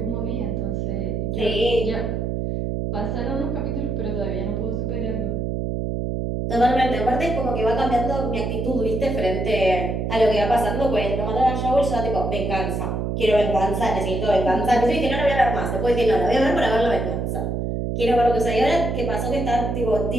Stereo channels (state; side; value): noise; right; hum, 1 dB below the sound